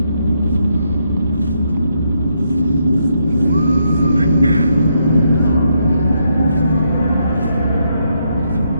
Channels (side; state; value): both; inverted; correlation -0.78